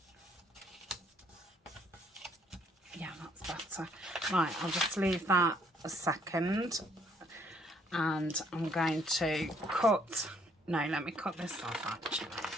Yeah, that's better. Right, I'll just leave that a second, and I'm going to cut. No, let me cut this off actually.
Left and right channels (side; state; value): both; normal; correlation 0.66